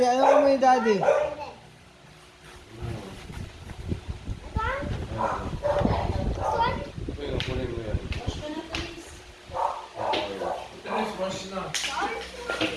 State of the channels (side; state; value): both; identical; correlation 1.00